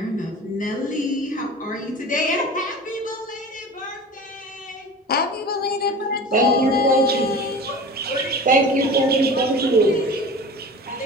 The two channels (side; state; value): both; normal; correlation 0.36